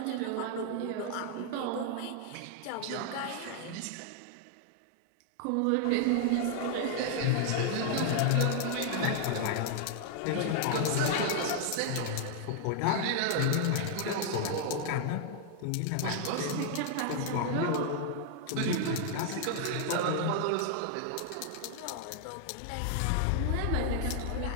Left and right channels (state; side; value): different; both; correlation 0.00